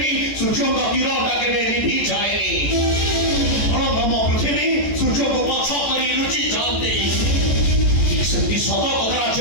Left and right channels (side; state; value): right; late; 14 ms